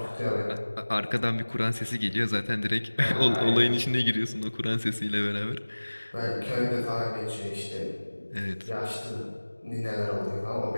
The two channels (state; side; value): inverted; both; correlation -1.00